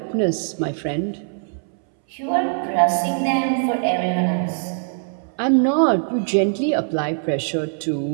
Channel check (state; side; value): silent; left; 64 dB below the other